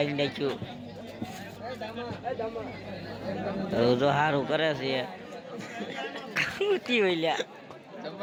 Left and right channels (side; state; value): both; identical; correlation 1.00